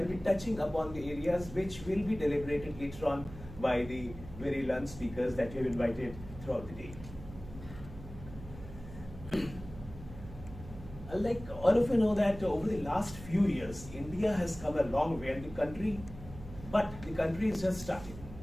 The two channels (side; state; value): right; noise; hum, 14 dB below the sound